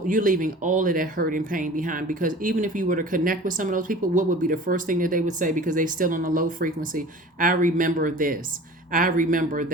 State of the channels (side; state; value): both; normal; correlation 0.42